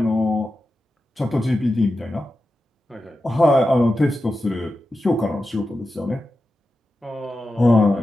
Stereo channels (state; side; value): normal; both; correlation 0.91